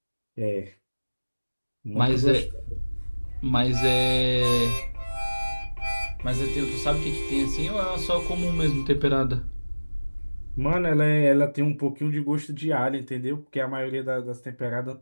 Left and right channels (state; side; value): inverted; both; correlation -1.00